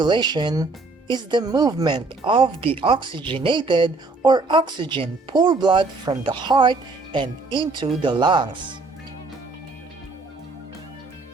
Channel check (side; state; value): left; quieter; 3.5 dB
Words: is the movement of the oxygenated or oxygen-poor blood from the heart and into the lungs.